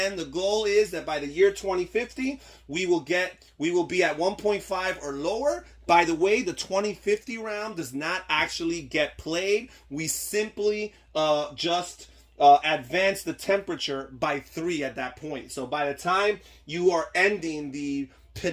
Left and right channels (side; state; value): both; identical; correlation 1.00